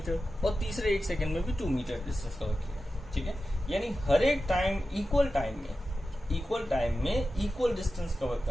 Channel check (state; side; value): normal; both; correlation 0.93